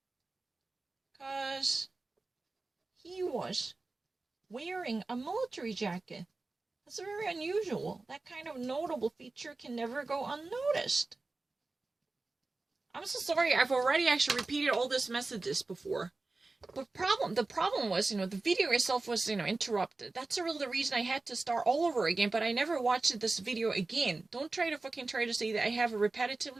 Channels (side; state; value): left; quieter; 3.5 dB